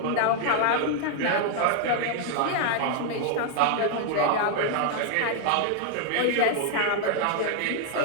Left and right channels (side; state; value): both; different; correlation 0.00